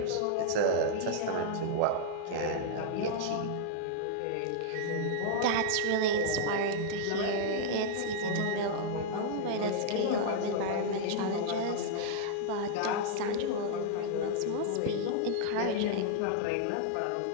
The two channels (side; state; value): both; different; correlation -0.01